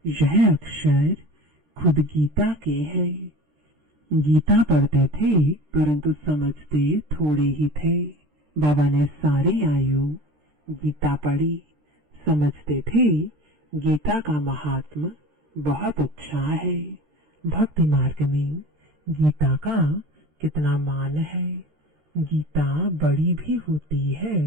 यह अक्षर खुद गीता के हैं। गीता पढ़ते थे परंतु समझते थोड़े ही थे। बाबा ने सारी आयु गीता पढ़ी, समझते थे गीता का महात्मा बहुत अच्छा है। भक्ति मार्ग में गीता का कितना मान है। गीता बड़ी भी होती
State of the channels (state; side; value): late; left; 13 ms